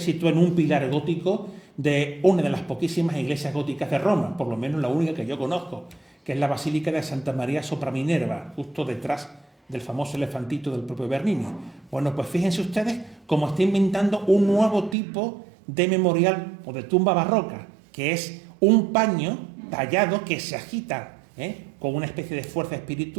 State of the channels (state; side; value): drops out; left; at 15.0 s